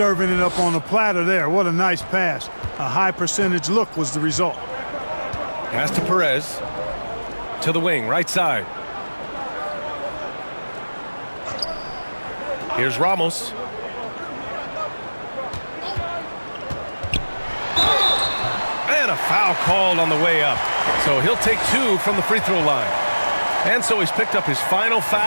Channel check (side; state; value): both; inverted; correlation -1.00